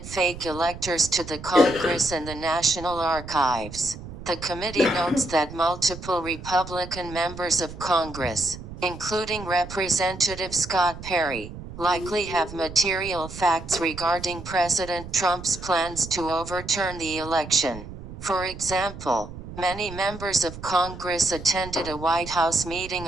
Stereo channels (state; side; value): noise; right; rumble, 12 dB below the sound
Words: fake electors to the Congress and the National Archives. The committee notes that multiple Republican members of Congress, including Representative Scott Perry, likely have material facts regarding President Trump's plans to overturn the election. For example, many members of Congress attended a White House meeting